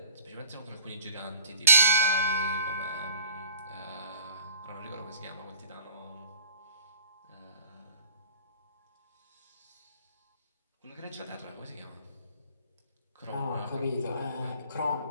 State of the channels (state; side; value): inverted; both; correlation -0.51